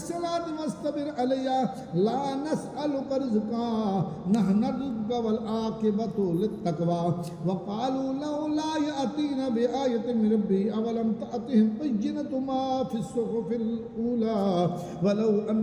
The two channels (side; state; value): both; identical; correlation 1.00